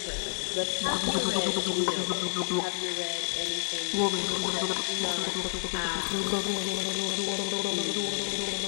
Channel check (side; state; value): right; silent; digital silence